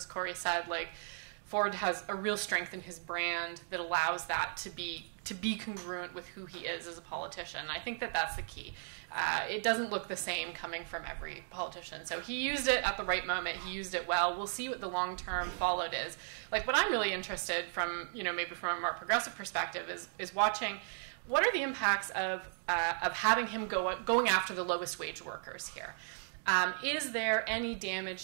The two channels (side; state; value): left; silent; digital silence